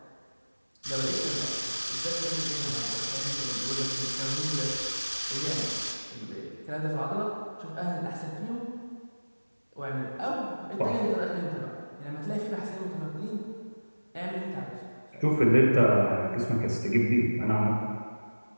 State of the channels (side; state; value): both; inverted; correlation -1.00